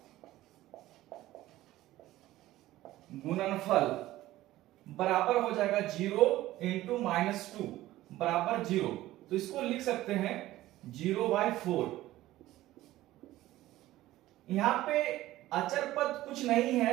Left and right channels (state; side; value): quieter; left; 15.8 dB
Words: गुणनफल बराबर हो जाएगा 0 × -2 बराबर 0। तो इसको लिख सकते हैं 0/4। यहां पे अचर पद कुछ नहीं